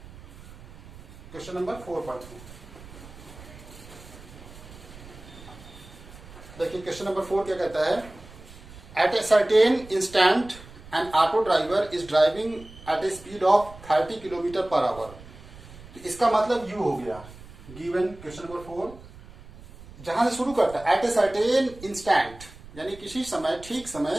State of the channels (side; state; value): right; noise; rumble, 18 dB below the sound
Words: Question number 4 पढ़ते हैं। देखिए क्वेश्चन नंबर 4 क्या कहता है, at a certain instant an auto driver is driving at a speed of 30 kilometre per hour. तो इसका मतलब यू हो गया, गिवन क्वेश्चन नंबर 4 जहां से शुरू करता है, एट ए सर्टेन इंस्टेंट, यानी किसी समय, ठीक समय,